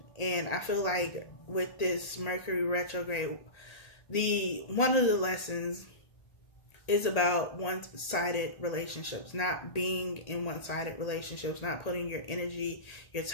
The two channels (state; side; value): late; right; 1.8 ms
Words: And I feel like with this Mercury retrograde, one of the lessons is about one-sided relationships, not being in one-sided relationships, not putting your energy, your